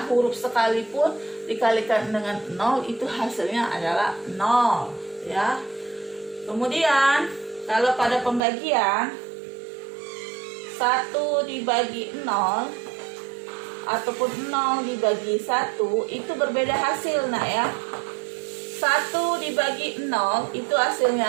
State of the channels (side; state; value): left; drops out; at 8.4 s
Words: huruf sekalipun dikalikan dengan 0 itu hasilnya adalah 0 ya. Kemudian kalau pada pembagian 1 dibagi 0 ataupun 0 dibagi 1 itu berbeda hasil nak ya. 1 dibagi 0 itu